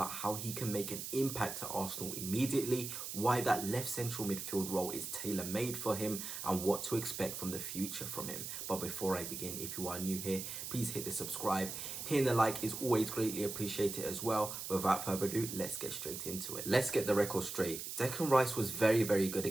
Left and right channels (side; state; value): right; noise; hiss, 6 dB below the sound